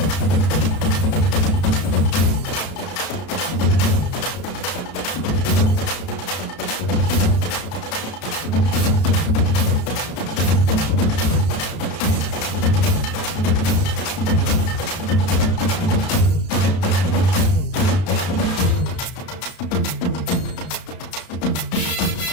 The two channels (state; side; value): late; right; 33 ms